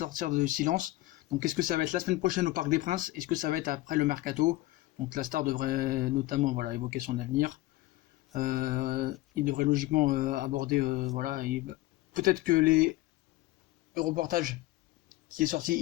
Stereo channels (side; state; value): right; quieter; 17.8 dB